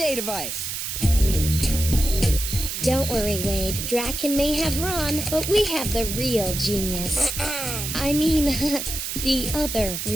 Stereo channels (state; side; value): noise; right; hiss, 4 dB below the sound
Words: device? Don't worry, Wade. Draken may have Ron, but we have the real genius. I mean, the other